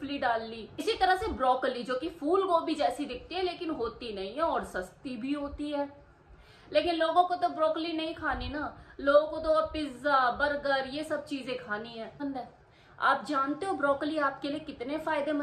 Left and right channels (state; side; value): identical; both; correlation 1.00